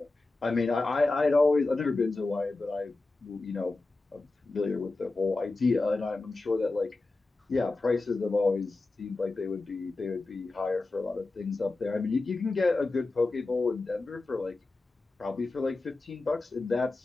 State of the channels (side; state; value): right; quieter; 3.3 dB